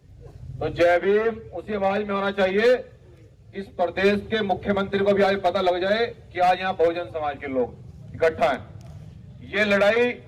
तो जय भीम उसी आवाज में होना चाहिए। इस प्रदेश के मुख्यमंत्री को भी आज पता लग जाए कि आज यहाँ बहुजन समाज के लोग इकट्ठा हैं। ये लड़ाई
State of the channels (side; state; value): both; identical; correlation 1.00